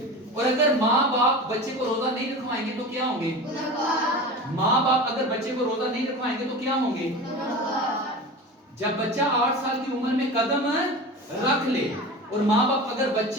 اور اگر ماں باپ بچے کو روزہ نہیں رکھوائیں گے تو کیا ہوں گے؟ ماں باپ اگر بچے کو روزہ نہیں رکھوائیں گے تو کیا ہوں گے؟ جب بچہ 8 سال کی عمر میں قدم رکھ لے اور ماں باپ اگر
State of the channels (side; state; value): both; normal; correlation 0.31